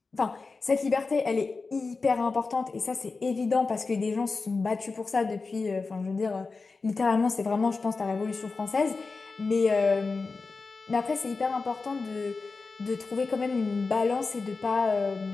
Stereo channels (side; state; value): right; quieter; 4.1 dB